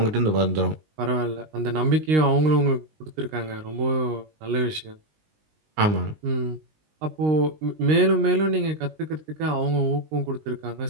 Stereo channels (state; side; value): late; left; 19 ms